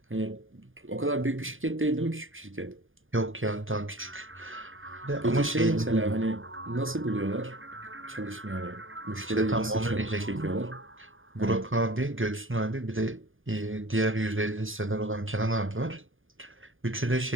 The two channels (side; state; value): left; late; 0.58 ms